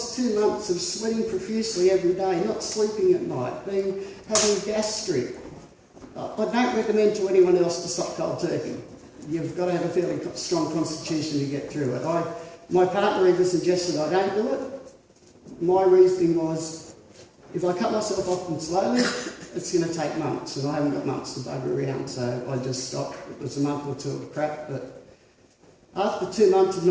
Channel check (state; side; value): identical; both; correlation 1.00